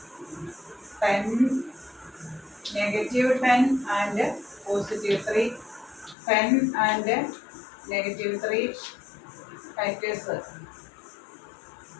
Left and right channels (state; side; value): drops out; right; at 6.2 s